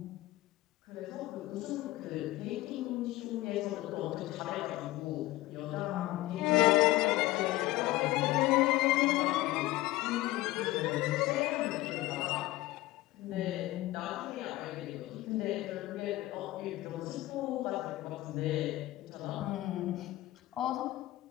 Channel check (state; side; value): quieter; right; 17.8 dB